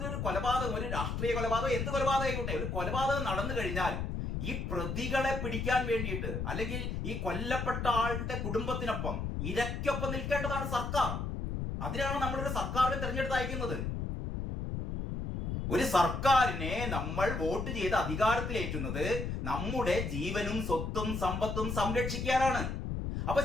ഒരു കൊലപാതകം, ഒരു രാഷ്ട്രീയ കൊലപാതകം, എന്ത് കൊലപാതകം, ഒരു കൊലപാതകം നടന്നു കഴിഞ്ഞാൽ ഈ പ്രതികളെ പിടിക്കാൻ വേണ്ടിയിട്ട്, അല്ലെങ്കിൽ ഈ കൊല്ലപ്പെട്ട ആളുടെ കുടുംബത്തിനൊപ്പം ഇരയ്ക്കൊപ്പം നിൽക്കേണ്ടതാണ് സർക്കാർ. അതിനാണ് നമ്മളൊരു സർക്കാരിനെ തെരഞ്ഞെടുത്ത് അയക്കുന്നത്. ഒരു സർക്കാരിനെ നമ്മൾ വോട്ട് ചെയ്ത് അധികാരത്തിലേറ്റുന്നത് നമ്മുടെ ജീവനും സ്വത്തും സമ്പത്തും സംരക്ഷിക്കാനാണ്. അപ്പൊ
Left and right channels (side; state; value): left; noise; rumble, 3 dB below the sound